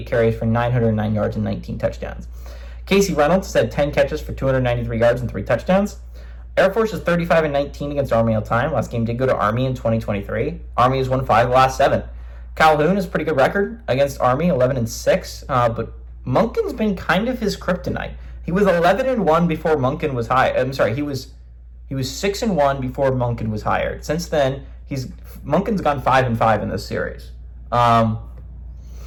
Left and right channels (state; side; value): identical; both; correlation 1.00